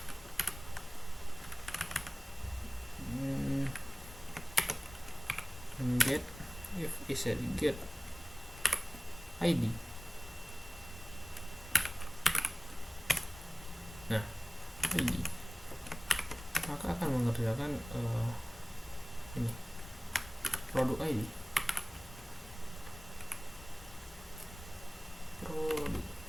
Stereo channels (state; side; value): normal; both; correlation 0.97